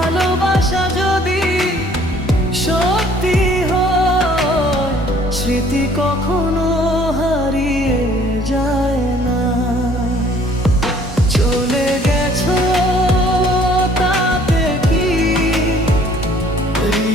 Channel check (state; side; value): normal; both; correlation 0.57